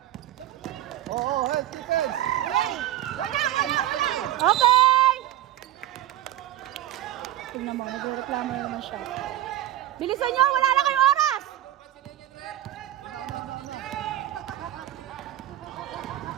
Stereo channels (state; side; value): quieter; left; 13.8 dB